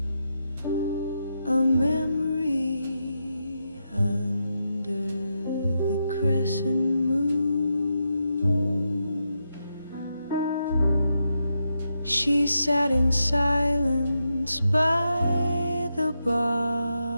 a memory under the crescent moon. She sat in silence by the bar,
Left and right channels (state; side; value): inverted; both; correlation -0.85